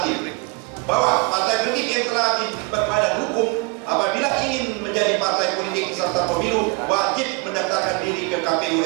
Bahwa partai politik yang telah berbadan hukum apabila ingin menjadi partai politik peserta pemilu wajib mendaftarkan diri ke KPU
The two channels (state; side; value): quieter; left; 28.5 dB